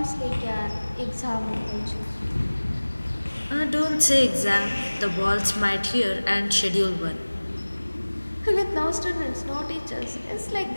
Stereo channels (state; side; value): inverted; both; correlation -1.00